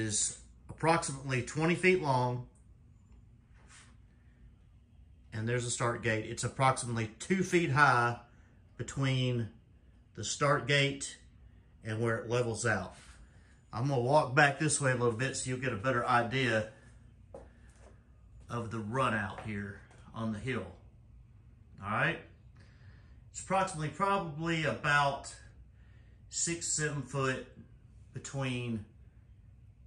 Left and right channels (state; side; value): identical; both; correlation 1.00